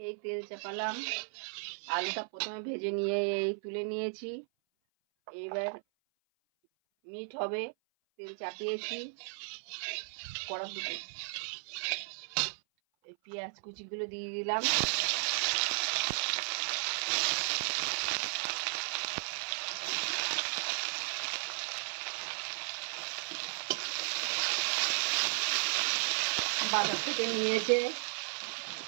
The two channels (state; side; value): silent; left; 55 dB below the other